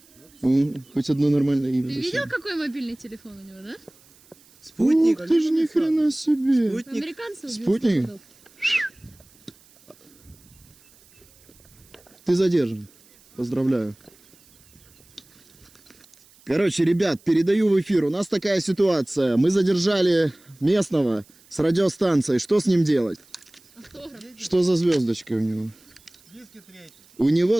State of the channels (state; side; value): noise; right; hiss, 28 dB below the sound